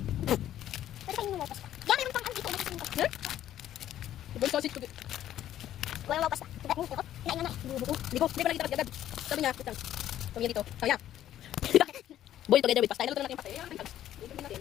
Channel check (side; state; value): right; quieter; 12.0 dB